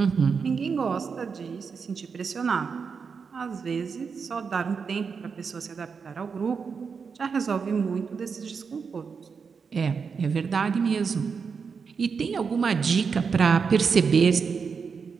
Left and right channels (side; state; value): left; quieter; 5.7 dB